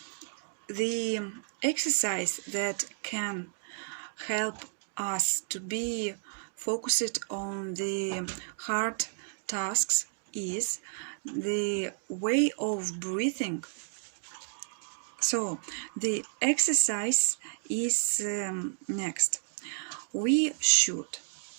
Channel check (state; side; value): silent; left; digital silence